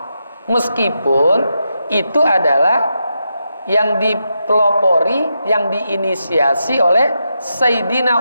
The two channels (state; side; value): inverted; both; correlation -0.85